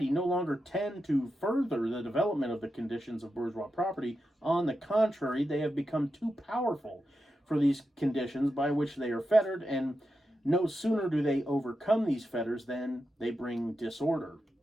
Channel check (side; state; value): both; normal; correlation 0.88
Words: no longer tend to further the development of the conditions of bourgeois property. On the contrary, they have become too powerful for these conditions by which they are fettered, and no sooner do they overcome these fetters than they bring disorder